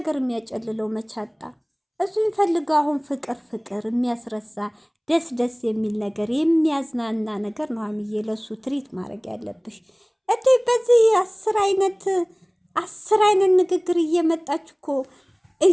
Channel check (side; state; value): both; identical; correlation 1.00